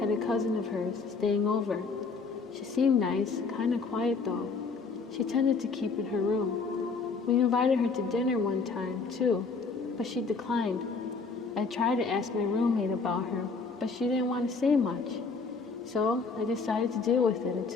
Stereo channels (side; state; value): right; quieter; 4.5 dB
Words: a cousin of hers staying over. She seemed nice, kind of quiet though. She tended to keep in her room. We invited her to dinner one time, too, but she declined. I tried to ask my roommate about her, but she didn't want to say much. So I decided to deal with it